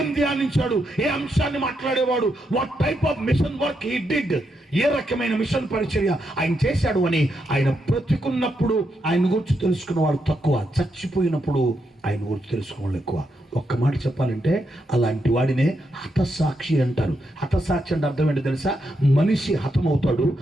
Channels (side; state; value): both; normal; correlation 0.81